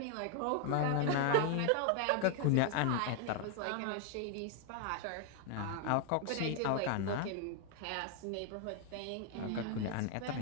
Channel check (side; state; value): both; different; correlation 0.01